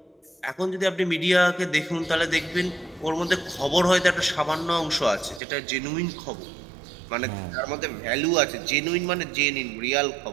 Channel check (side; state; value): left; drops out; at 5.4 s